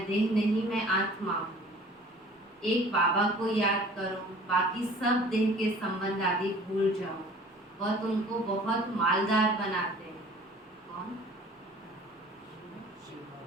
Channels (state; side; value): normal; both; correlation 0.48